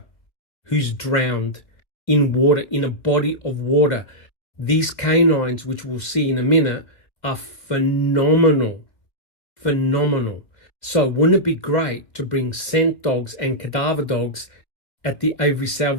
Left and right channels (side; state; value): right; late; 2.2 ms